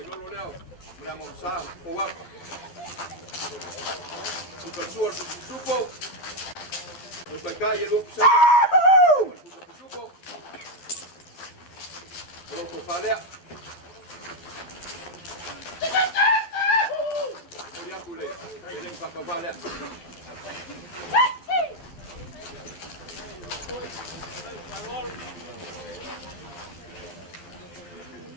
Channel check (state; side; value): late; right; 12 ms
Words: lo leo. Mula mo sa kuwa. Suka suar supo. Lo pai kai lo sa. Supo. Lo ko falea. Mulia kule. Ele pakavale.